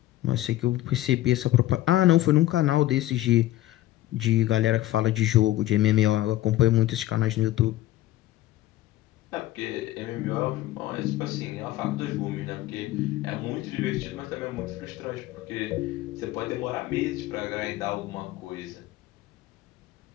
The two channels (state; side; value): quieter; right; 15.3 dB